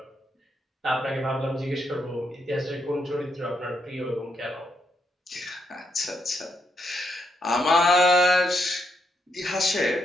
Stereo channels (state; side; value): normal; both; correlation 0.79